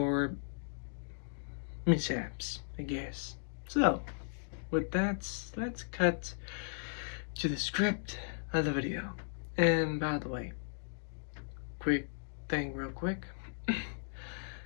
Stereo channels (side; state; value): right; silent; digital silence